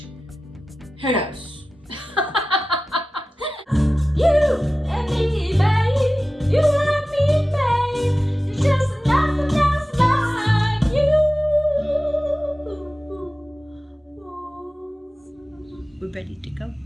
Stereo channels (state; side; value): normal; both; correlation 0.95